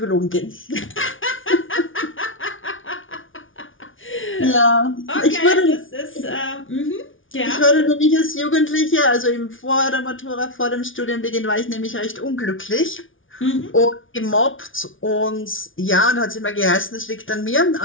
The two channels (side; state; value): right; late; 0.57 ms